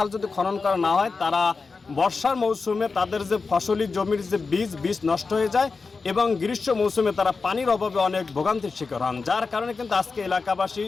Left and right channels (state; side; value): quieter; right; 4.4 dB